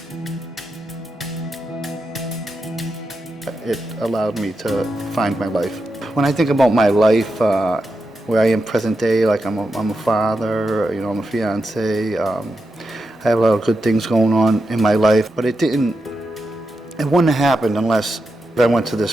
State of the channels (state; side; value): normal; both; correlation 0.87